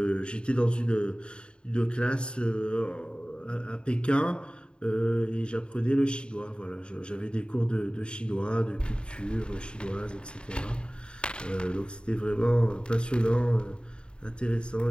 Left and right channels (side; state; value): right; late; 0.052 ms